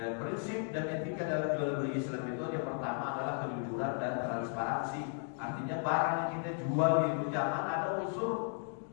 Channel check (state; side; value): silent; right; 54 dB below the other